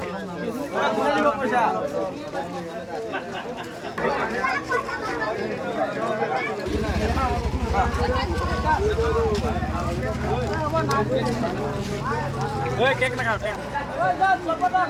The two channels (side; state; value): both; identical; correlation 1.00